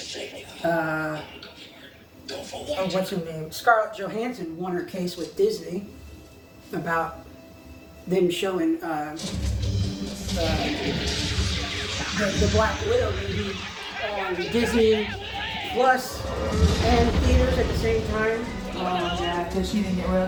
Go for what? Oh, what's her name? Scarlett Johansson won her case with Disney about them showing the Black Widow movie on Disney Plus and theaters at the same time. Oh, yeah, because she didn't get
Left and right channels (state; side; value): identical; both; correlation 1.00